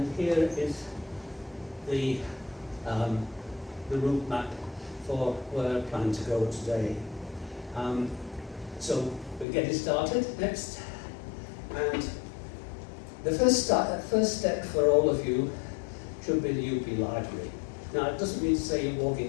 here is the route map for where I plan to go today. So we're getting started next, and the first step for all of you should be the UP Library. Now, it doesn't mean to say you're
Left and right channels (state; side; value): drops out; right; at 9.5 s